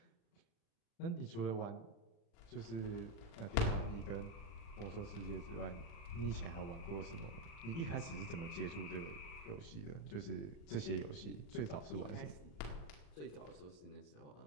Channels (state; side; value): late; right; 35 ms